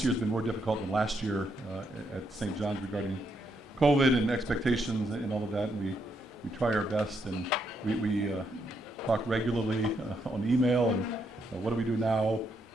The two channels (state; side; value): normal; both; correlation 0.77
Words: year's been more difficult than last year at St. John's regarding COVID and expectations and all of that, and we try our best, and we talk regularly on email, and what do we do now?